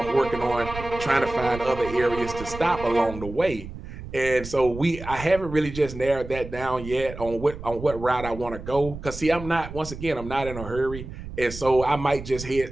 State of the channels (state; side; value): noise; right; rumble, 11 dB below the sound